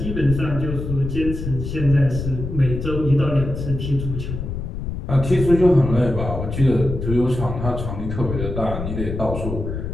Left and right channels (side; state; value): left; noise; rumble, 5 dB below the sound